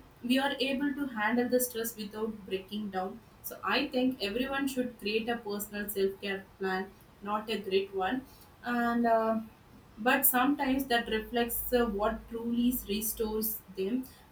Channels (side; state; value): both; identical; correlation 1.00